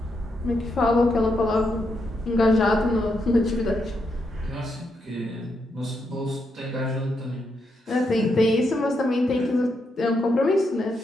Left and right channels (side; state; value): both; normal; correlation 0.81